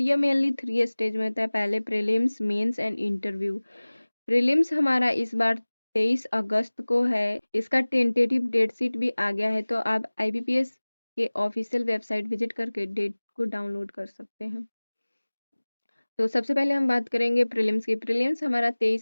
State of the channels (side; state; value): both; inverted; correlation -1.00